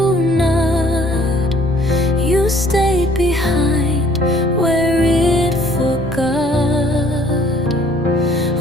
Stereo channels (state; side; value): normal; both; correlation 0.58